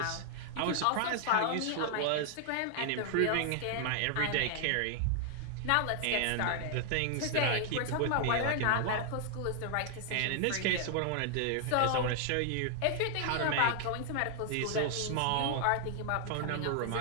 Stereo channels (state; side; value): different; both; correlation -0.01